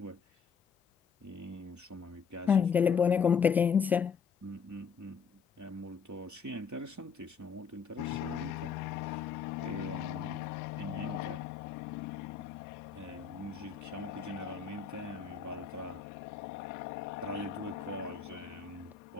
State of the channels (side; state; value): right; quieter; 6.4 dB